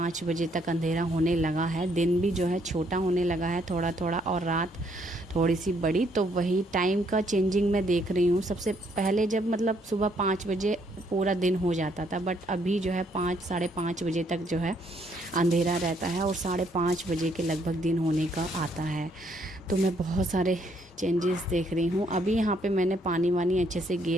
बजे तक अंधेरा होने लगा है। दिन भी जो है छोटा होने लगा है थोड़ा थोड़ा, और रात थोड़ी सी बड़ी। तो वही टाइम का चेंजिंग मैं देख रही हूँ। सबसे पहले जब मतलब सुबह 5 बजे पूरा दिन हो जाता था, बट अभी जो है 5 साढ़े 5 बजे तक जो है अंधेरा रहता है, और 5:30 बजे के लगभग दिन होने का आता है। तो मैं बहुत सारे चेंजेस देख रही हूँ। अभी यहाँ पे मैंने पानी वानी अच्छे से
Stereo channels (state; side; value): normal; both; correlation 0.69